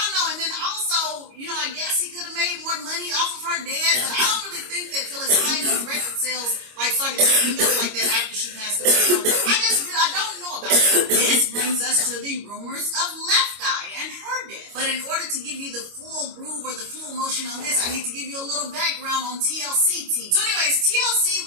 know. And then also, I guess he could have made more money off of her dad, but I don't really think that Phyllis Hyman's record sales started picking up like that after she passed away. So I don't know about that. This brings us to the rumors of Left Eye and her death. But in order to give you the full groove or the full emotion on this, I need to give you a little background on TLC team. So anyways,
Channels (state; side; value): late; left; 25 ms